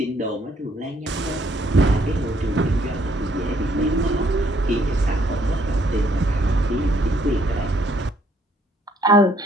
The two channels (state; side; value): normal; both; correlation 0.67